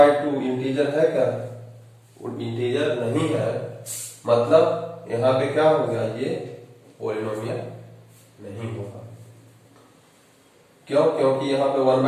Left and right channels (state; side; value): identical; both; correlation 1.00